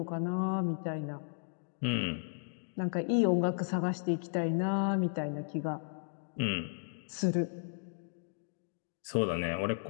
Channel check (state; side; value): silent; right; digital silence